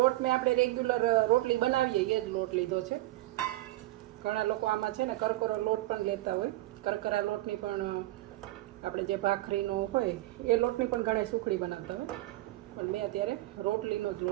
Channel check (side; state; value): left; quieter; 17.7 dB